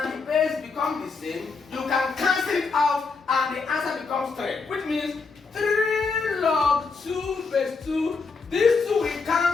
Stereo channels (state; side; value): quieter; right; 4.6 dB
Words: the base become the same, you can cancel it out and the answer becomes 3. Which means 3 log 2 base 2, these 2 will